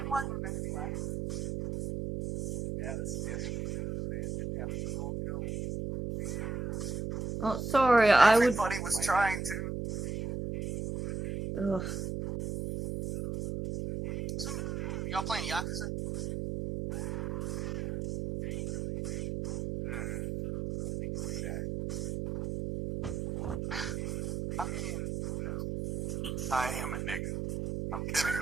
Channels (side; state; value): right; noise; hum, 3 dB below the sound